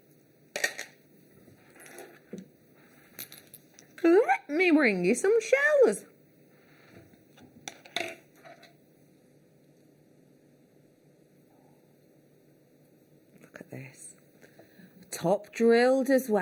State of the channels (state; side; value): identical; both; correlation 1.00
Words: Let me bring you some shells. Look at this. Top drilled as